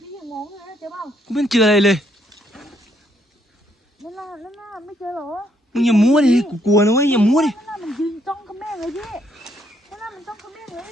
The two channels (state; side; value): normal; both; correlation 0.72